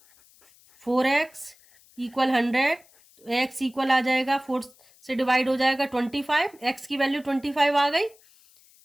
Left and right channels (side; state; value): left; noise; hiss, 29 dB below the sound